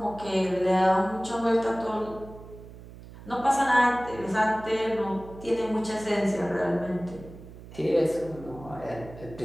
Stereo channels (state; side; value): noise; right; hum, 17 dB below the sound